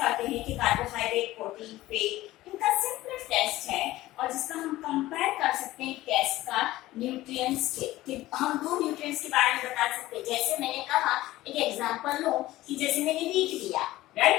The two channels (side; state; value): right; quieter; 16.7 dB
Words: करते हैं कि कार्बोहाइड्रेट, प्रोटीन, फैट, इनका सिंपल टेस्ट है और जिसका हम कंपेयर कर सकते हैं टेस्ट का न्यूट्रिएंट्स के, कि हम दो न्यूट्रिएंट्स के बारे में बता सकते हैं। जैसे मैंने कहा, एक एग्जांपल लो कि जैसे मैंने वीट लिया,